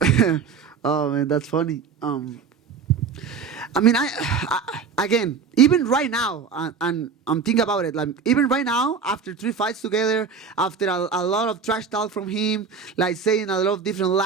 Oh, man, that's funny. I mean, I again, even right now, and I'm thinking about it, like even right now, after 3 fights together, after a lot of trash talk from him, like saying a lot of different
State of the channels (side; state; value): left; quieter; 5.8 dB